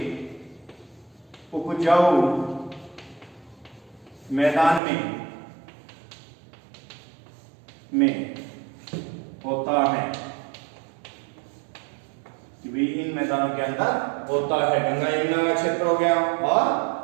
उपजाऊ मैदान में होता है कि भी इन मैदानों के अंदर होता है। गंगा यमुना का क्षेत्र हो गया और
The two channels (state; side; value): drops out; left; at 4.8 s